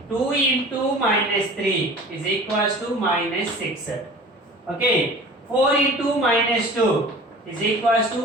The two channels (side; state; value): both; normal; correlation 0.42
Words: 2 into minus 3 is equals to minus 6. Okay. 4 into minus 2 is equals